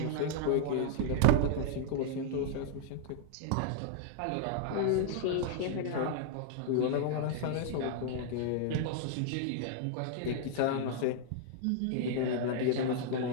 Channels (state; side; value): different; both; correlation -0.01